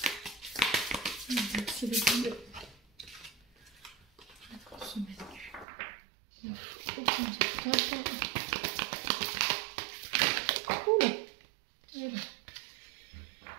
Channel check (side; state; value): left; drops out; at 5.7 s